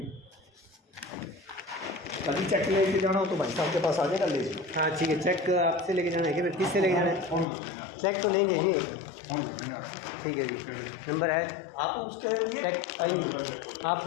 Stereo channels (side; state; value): right; drops out; at 7.5 s